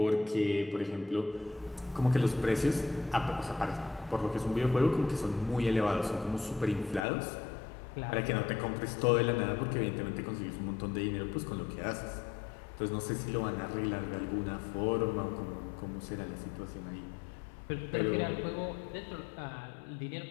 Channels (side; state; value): right; drops out; at 7.0 s